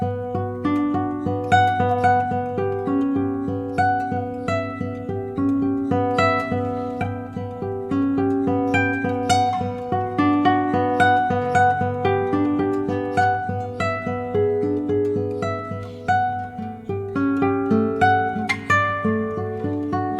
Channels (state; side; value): identical; both; correlation 1.00